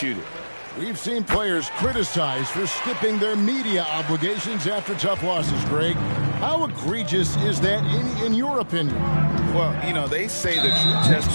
it. We've seen players criticized for skipping their media obligations after tough losses, Greg. How egregious is that in your opinion? Well, you know, they say the true test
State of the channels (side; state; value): both; inverted; correlation -1.00